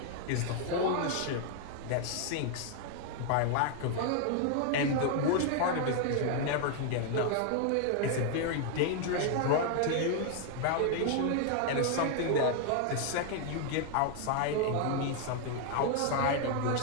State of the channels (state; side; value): different; both; correlation 0.00